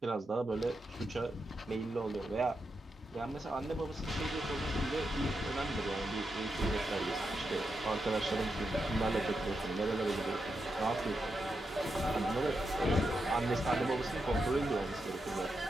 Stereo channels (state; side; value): normal; both; correlation 0.86